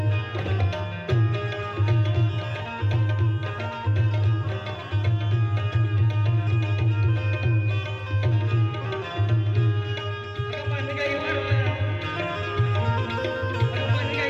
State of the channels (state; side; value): identical; both; correlation 1.00